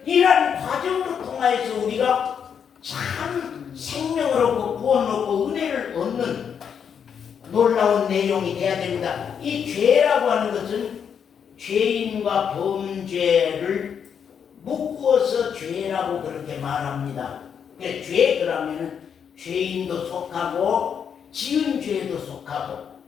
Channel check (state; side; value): quieter; right; 7.5 dB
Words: 이러한 과정을 통하여서 우리가 참 생명을 얻고 구원을 얻고 은혜를 얻는 놀라운 내용이 돼야 됩니다. 이 죄라고 하는 것은 죄인과 범죄를 묶어서 죄라고 그렇게 말합니다. 죄 그러면 죄인도 속하고 지은 죄도 속하고